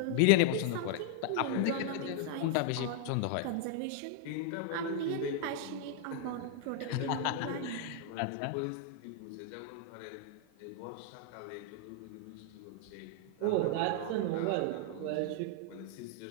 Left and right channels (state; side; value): different; both; correlation 0.00